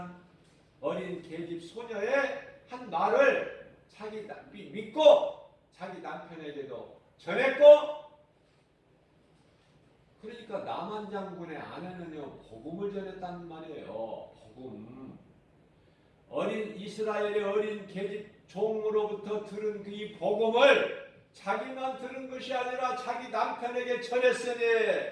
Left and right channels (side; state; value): both; identical; correlation 1.00